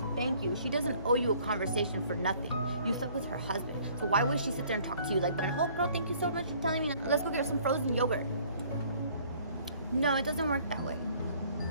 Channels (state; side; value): inverted; both; correlation -0.57